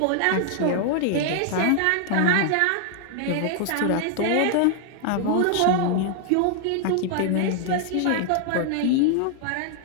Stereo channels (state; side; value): different; both; correlation 0.00